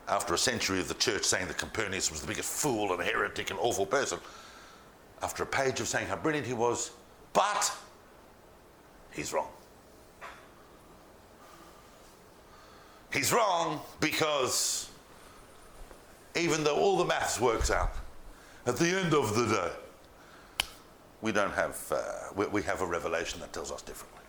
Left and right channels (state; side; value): identical; both; correlation 1.00